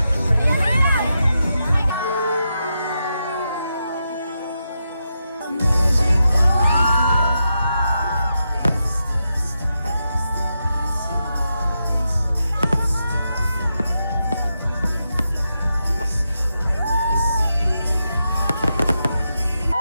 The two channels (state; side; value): inverted; both; correlation -0.86